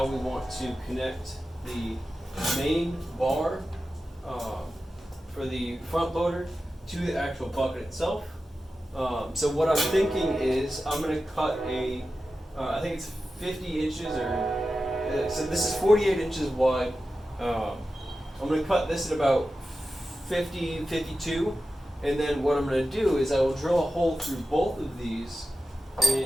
we want to connect the main bar for the front loader to the actual bucket itself. So what I'm thinking is I'm going to cut I think it's 50 inches so this is 48 inches wide. I'm going to cut this at about 50, 52. And then what I'm going to do is I will drill a hole through both of these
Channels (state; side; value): normal; both; correlation 0.92